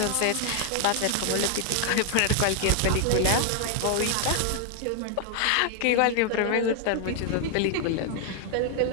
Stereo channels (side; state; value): both; different; correlation 0.00